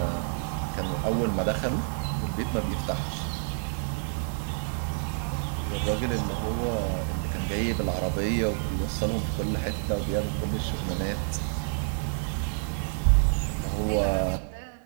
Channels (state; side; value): silent; left; digital silence